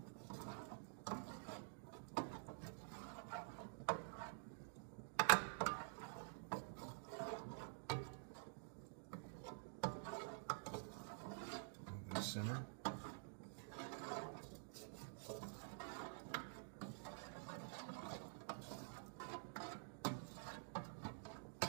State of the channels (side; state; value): left; silent; digital silence